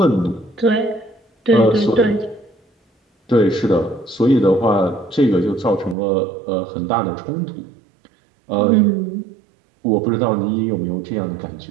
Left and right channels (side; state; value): left; drops out; at 6.0 s